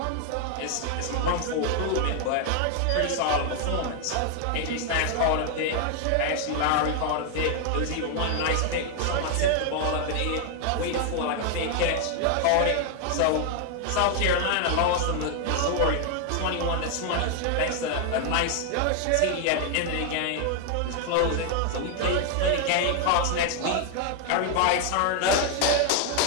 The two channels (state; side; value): different; both; correlation 0.00